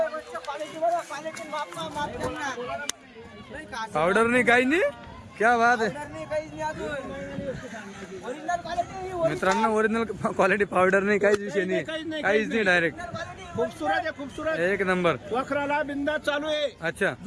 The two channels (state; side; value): identical; both; correlation 1.00